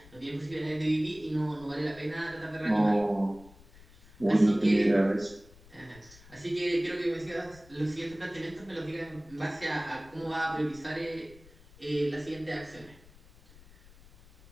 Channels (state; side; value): noise; left; rumble, 23 dB below the sound